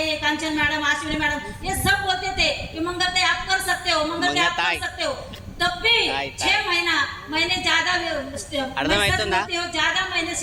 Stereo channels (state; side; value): identical; both; correlation 1.00